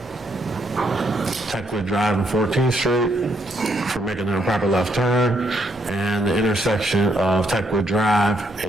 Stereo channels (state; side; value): normal; both; correlation 0.74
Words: Techwood Drive and 14th Street for making an improper left turn, and the intersection of Techwood Drive